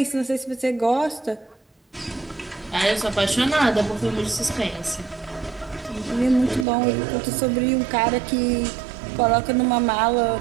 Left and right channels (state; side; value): drops out; left; at 6.7 s